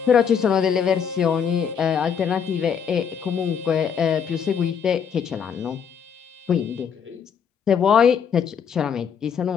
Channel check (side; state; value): right; quieter; 7.2 dB